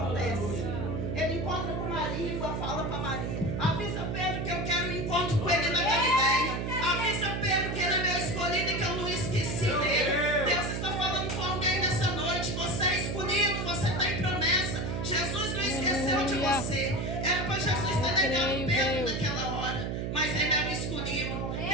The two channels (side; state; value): right; noise; hum, 2 dB below the sound